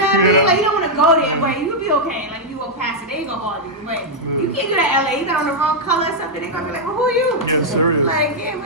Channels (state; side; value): normal; both; correlation -0.04